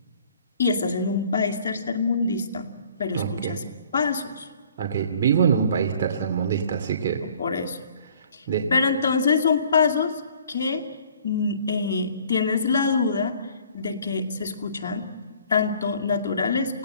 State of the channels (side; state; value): both; inverted; correlation -0.55